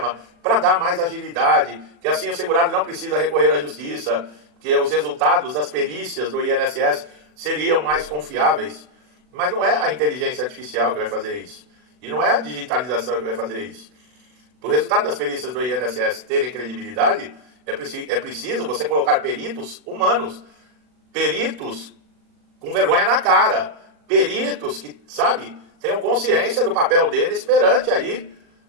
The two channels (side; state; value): left; late; 40 ms